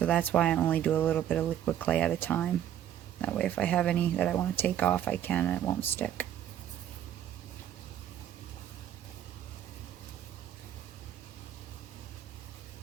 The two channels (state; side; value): quieter; left; 10.8 dB